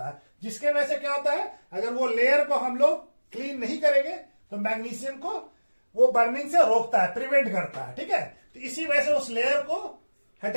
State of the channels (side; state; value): both; inverted; correlation -1.00